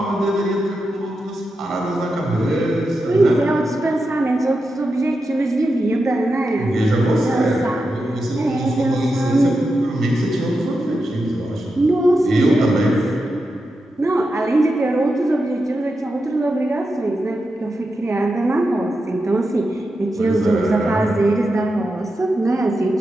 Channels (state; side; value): normal; both; correlation 0.88